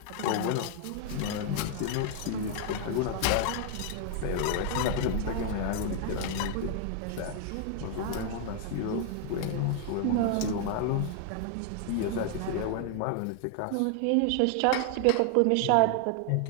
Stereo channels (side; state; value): both; different; correlation 0.00